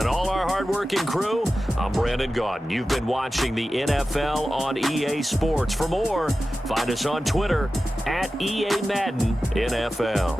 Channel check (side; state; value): both; normal; correlation 0.94